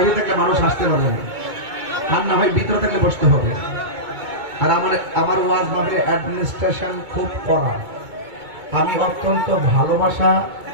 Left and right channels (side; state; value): left; late; 2.2 ms